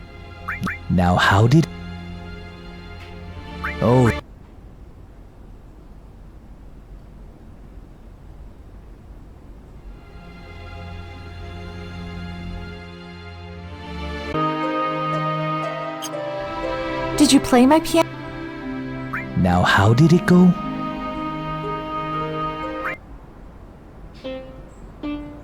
Now how did... Oh. Did you play my piano? Now how did it go?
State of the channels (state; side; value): identical; both; correlation 1.00